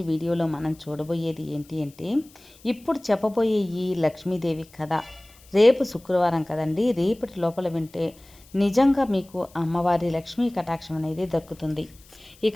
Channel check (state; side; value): noise; left; hiss, 26 dB below the sound